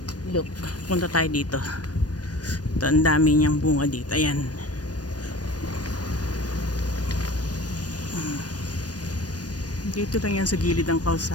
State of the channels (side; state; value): right; late; 0.69 ms